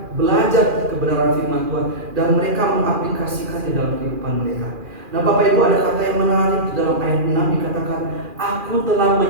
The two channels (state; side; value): late; left; 2.4 ms